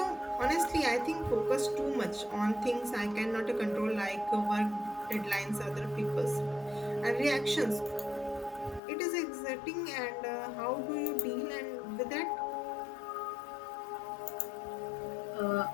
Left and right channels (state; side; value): drops out; right; at 8.8 s